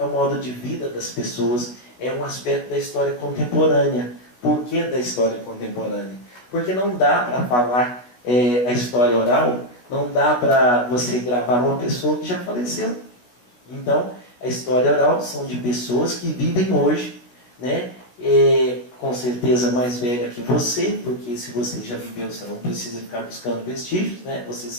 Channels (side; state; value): right; late; 17 ms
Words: o modo de vida das pessoas, é um aspecto da história contemporânea. Por que da história contemporânea? Porque não dá para falar a história oral, não dá para você gravar uma pessoa que já faleceu. Então, a história oral são de pessoas que vivem hoje, né? Com certeza mais velha que você, porque se você já viveu, você não precisa ficar buscando vestígios, né? Você